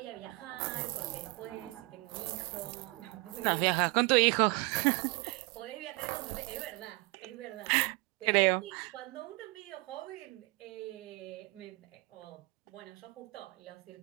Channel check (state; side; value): quieter; left; 24.2 dB